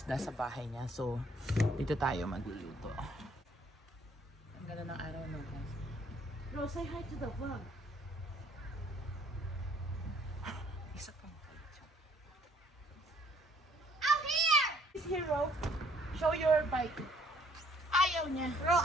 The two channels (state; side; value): normal; both; correlation 0.62